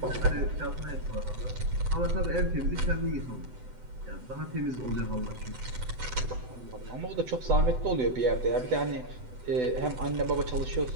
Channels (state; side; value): late; left; 7.9 ms